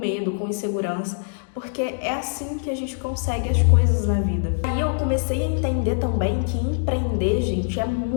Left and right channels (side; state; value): right; silent; digital silence